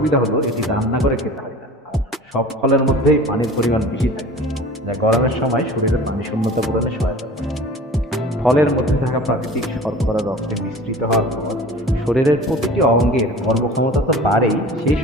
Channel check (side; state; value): both; normal; correlation 0.41